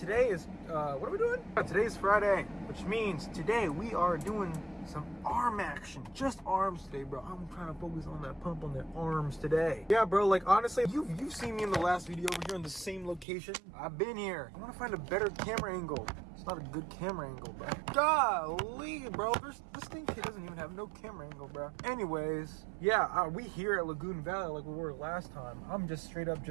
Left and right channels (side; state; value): left; drops out; at 13.2 s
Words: is, what are we doing? Today's Friday, which means today we are doing some arm action. Just arms today, bro. I'm trying to focus on that pump on the arms today. Yeah, bro, like honestly, you've seen me in the last video over here in the same location. I've been here. I want to find a better camera angle. It's not a good camera angle, bro. Golly, bro. This thing doesn't even have no camera angle, bro. Anyways, yeah, we here at Lagoon Valley like we were last time. I'm just straight up